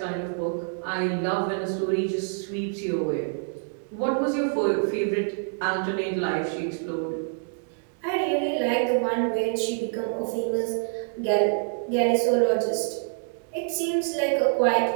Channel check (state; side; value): silent; left; digital silence